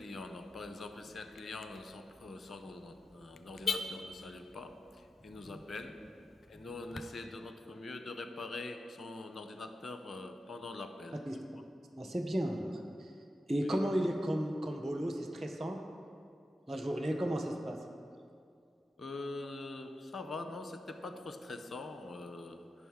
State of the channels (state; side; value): normal; both; correlation 0.90